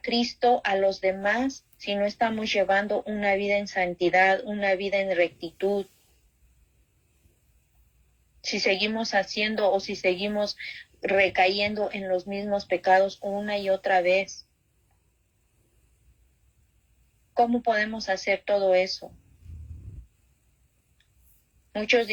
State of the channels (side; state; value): both; identical; correlation 1.00